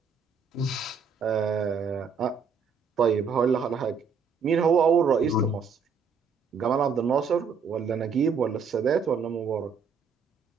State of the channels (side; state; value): left; quieter; 5.7 dB